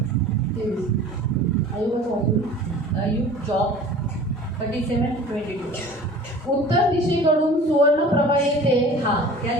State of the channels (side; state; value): both; normal; correlation 0.43